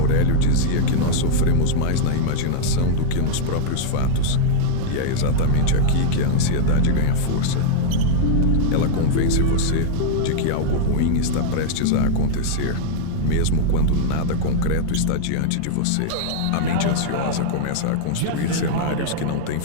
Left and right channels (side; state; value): both; different; correlation -0.01